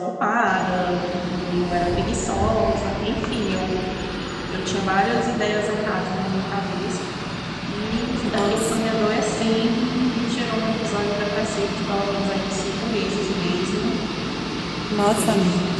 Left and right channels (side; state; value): both; identical; correlation 1.00